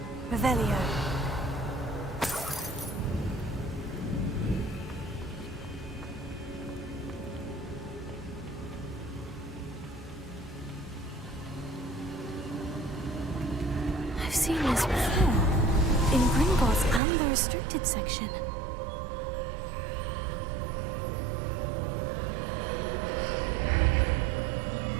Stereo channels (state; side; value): drops out; left; at 17.0 s